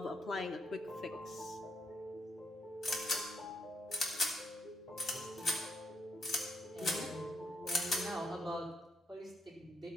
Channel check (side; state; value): both; normal; correlation 0.78